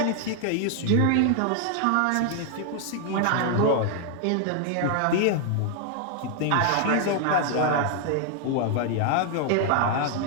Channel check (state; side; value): different; both; correlation 0.00